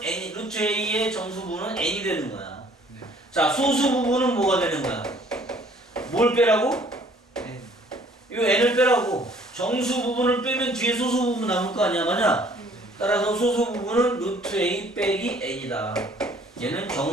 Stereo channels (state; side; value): normal; both; correlation 0.58